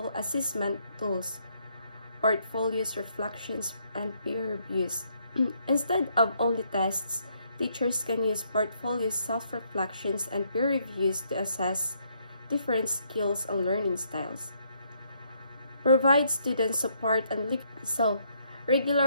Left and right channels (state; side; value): inverted; both; correlation -0.72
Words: assessment tools, portfolios, reflections, and peer reviews. Instead of only tests, teachers can use portfolios, self-reflections, and peer reviews to assess different skills and learning styles. Provide student support and